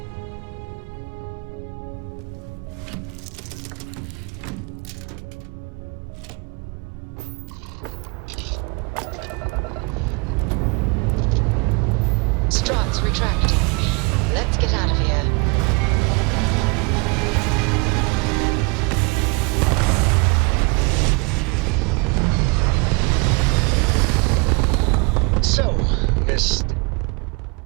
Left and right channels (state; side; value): quieter; left; 30.9 dB